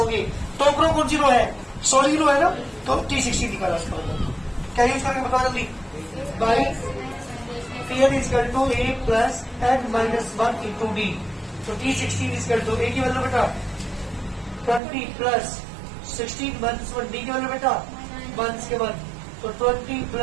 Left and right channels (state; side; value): drops out; left; at 14.8 s